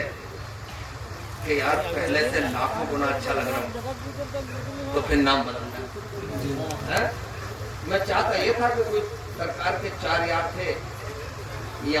کہ یار پہلے سے لاکھوں گنا اچھا لگ رہا ہوں, تو پھر نام بدلنا. میں چاہتا یہ تھا کہ کوئی سرکار کے 4 یار تھے,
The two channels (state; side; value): identical; both; correlation 1.00